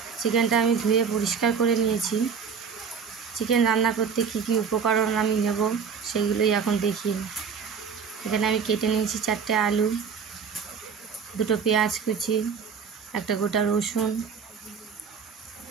চিকেনটা আমি ধুয়ে পরিষ্কার করে নিয়েছি। চিকেন রান্না করতে কী কী উপকরণ আমি নেব সেগুলোই এখন দেখি। এখানে আমি কেটে নিয়েছি 4টে আলু, 2টো পেঁয়াজ কুচি, একটা গোটা রসুন,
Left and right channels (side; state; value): left; quieter; 6.3 dB